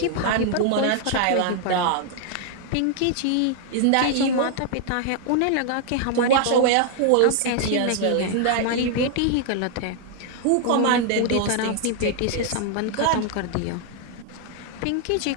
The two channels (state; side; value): different; both; correlation 0.00